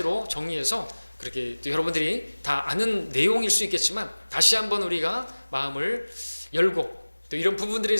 정리해서 그렇게 또 여러분들이 다 아는 내용일 수 있겠지만 다시 한번 우리가 마음을 열고, 또 이런 부분들에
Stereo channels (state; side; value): inverted; both; correlation -1.00